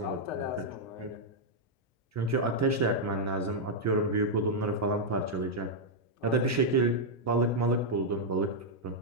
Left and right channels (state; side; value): normal; both; correlation -0.03